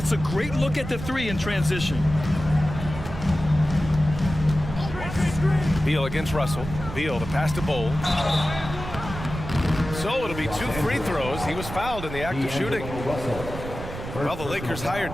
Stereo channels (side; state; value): right; noise; rumble, 9 dB below the sound